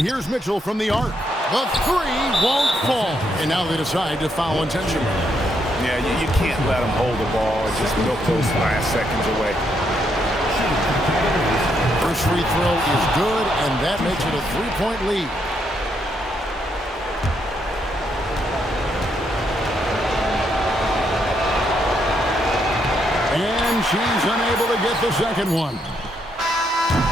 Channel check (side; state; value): both; normal; correlation 0.77